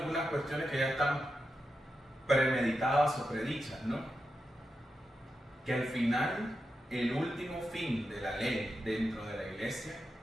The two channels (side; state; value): both; normal; correlation 0.88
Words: cuestiones que ya están premeditadas o predichas, ¿no? Que al final, el último fin de la ley dentro de la iglesia